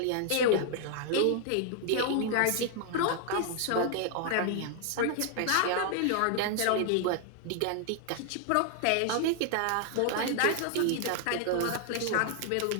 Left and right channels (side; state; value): both; different; correlation 0.00